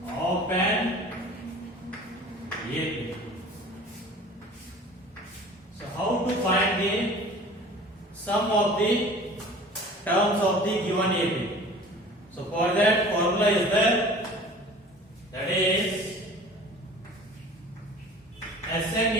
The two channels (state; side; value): normal; both; correlation 0.44